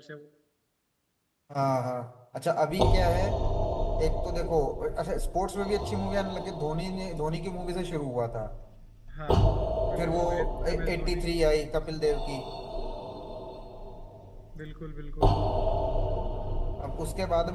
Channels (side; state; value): both; identical; correlation 1.00